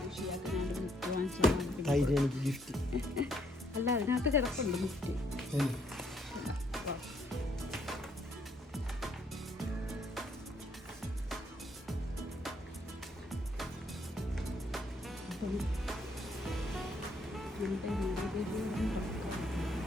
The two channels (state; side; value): normal; both; correlation 0.69